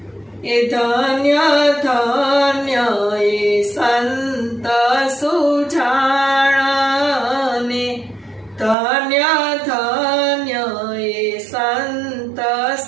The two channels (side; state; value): left; drops out; at 8.8 s